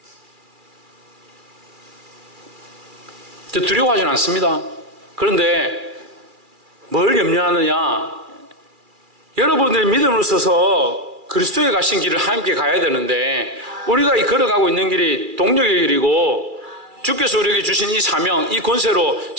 두려워하지는 않습니다. 그런데 뭘 염려하느냐? 여러분들이 믿음으로 서서 그리스도에 가신 길을 함께 가야 되는데, 우리가 이 걸어가고 있는 길이 동력의 길이고 주께서 우리에게 주신 이 사명, 이 권세로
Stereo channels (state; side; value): late; left; 2.4 ms